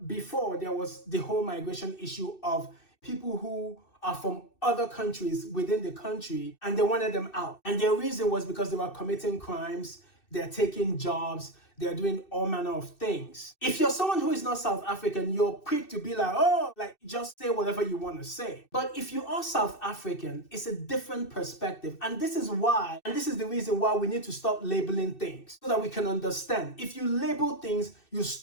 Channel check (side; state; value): right; late; 2.6 ms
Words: before there was the whole migration issue of people who are from other countries within the country and they wanted them out. And their reason was because they were committing crimes, they're taking jobs, they're doing all manner of things. If you're someone who is not South African, you're quick to be like, oh, like just say whatever you want to say. But if you are South African, it's a different perspective. And this is the reason why we need to stop labeling things so that we can understand. If you label things, you